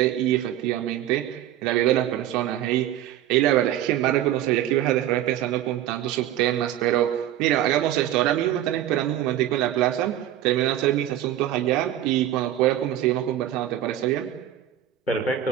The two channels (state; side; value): quieter; left; 12.2 dB